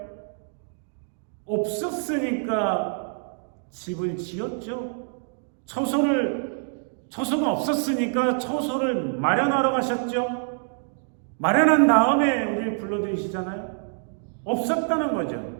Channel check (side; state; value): left; silent; 61 dB below the other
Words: 없었으니까 집을 지었죠. 처소가 없었으니까 처소를 마련하러 가셨죠. 마련한 다음에 우리를 불러들이시잖아요. 없었다는